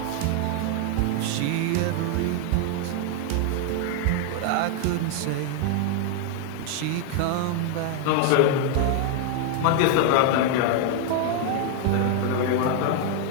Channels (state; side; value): different; both; correlation 0.00